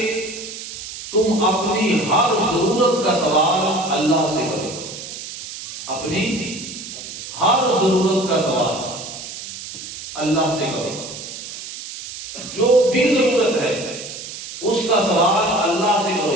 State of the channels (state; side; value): noise; right; hiss, 11 dB below the sound